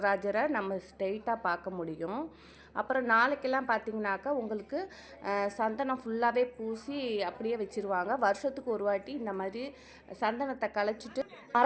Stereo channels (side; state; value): both; identical; correlation 1.00